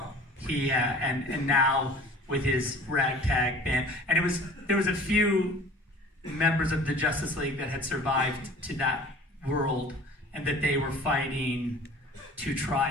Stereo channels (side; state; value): both; normal; correlation 0.45